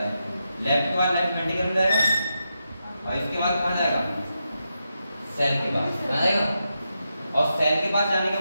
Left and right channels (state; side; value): inverted; both; correlation -0.86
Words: है। लेफ्ट के बाद लेफ्ट वेंट्रिकल में जाएगा और इसके बाद कहाँ जाएगा? सेल के पास जाएगा। और सेल के पास जाने के